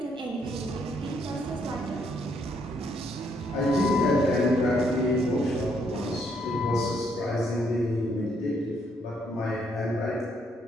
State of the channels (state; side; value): normal; both; correlation 0.71